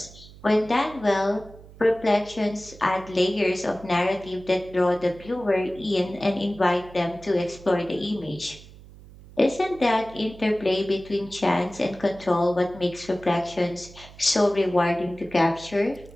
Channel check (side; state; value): right; noise; hum, 20 dB below the sound